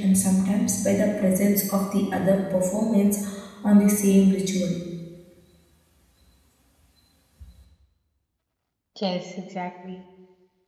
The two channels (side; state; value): both; identical; correlation 1.00